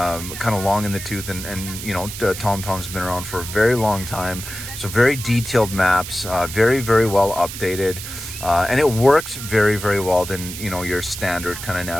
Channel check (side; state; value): right; noise; hiss, 9 dB below the sound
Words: of long in the tooth, and you know, TomTom's been around for a very long time, so very detailed maps, very well updated, and it works very well than, you know, your standard kind of